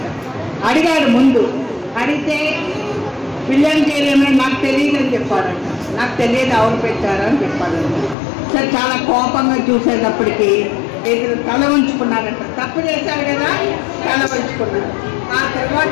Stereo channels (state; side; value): drops out; right; at 8.2 s